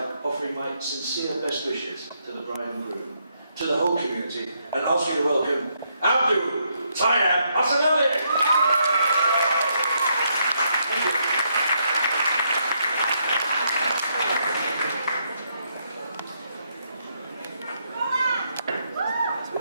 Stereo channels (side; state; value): both; inverted; correlation -0.76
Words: offering my sincere best wishes to the bride and groom, to the whole community, and ask you to welcome Abdul Tayyab Asanali. Thank you.